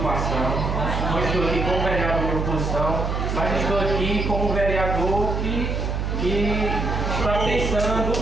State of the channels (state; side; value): noise; right; hum, 1 dB below the sound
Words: Não estou aqui como vereador de oposição, mas estou aqui como vereador que está pensando no